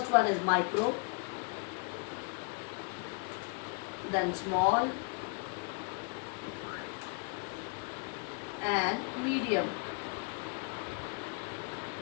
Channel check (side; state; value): right; quieter; 35.3 dB